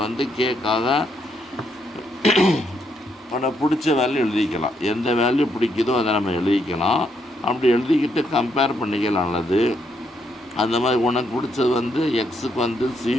கேக்காக உனக்கு பிடிச்ச வேல்யூ எழுதிக்கலாம். எந்த வேல்யூ பிடிக்குதோ அதை நம்ம எழுதிக்கலாம். அப்படி எழுதிக்கிட்டு கம்பேர் பண்ணிக்கலாம். நல்லது. அந்த மாதிரி உனக்கு பிடிச்சது எக்ஸுக்கு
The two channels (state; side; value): normal; both; correlation 0.76